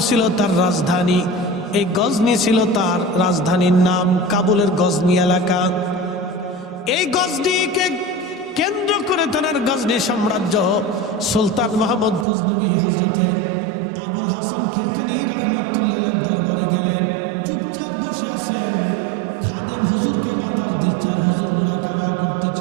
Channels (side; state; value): left; drops out; at 12.2 s